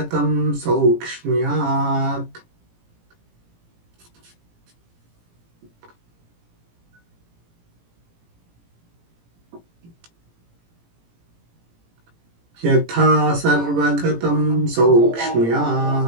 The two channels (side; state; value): left; late; 18 ms